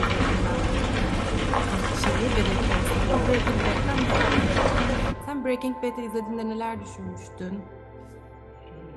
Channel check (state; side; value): identical; both; correlation 1.00